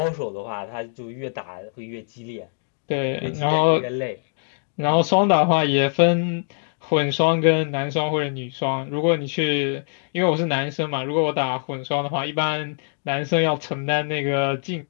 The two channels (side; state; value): right; silent; digital silence